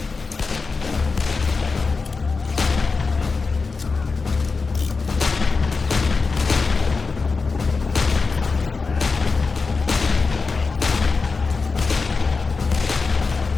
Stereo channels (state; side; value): quieter; right; 4.4 dB